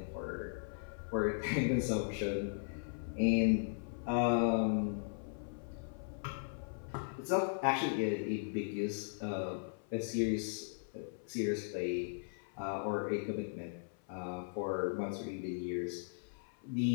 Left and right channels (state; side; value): silent; right; 53 dB below the other